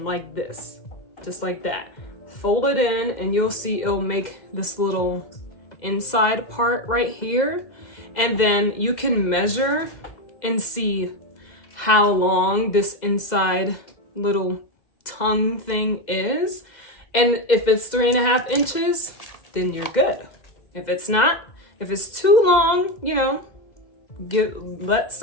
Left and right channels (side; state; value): right; late; 2.0 ms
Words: like this, just like that. Fold it in, and you'll see it'll make this little inside part right here. And then you can measure and see how long this inside little tongue thing is. And if it's 3.5 inches, then you're good. If it's not, if it's too long, you know, let